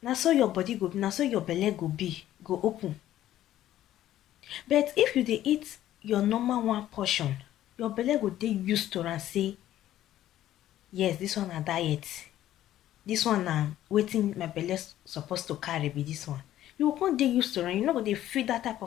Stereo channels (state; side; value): quieter; right; 13.0 dB